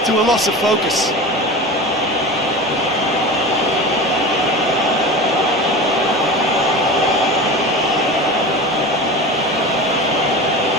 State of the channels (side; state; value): both; normal; correlation 0.31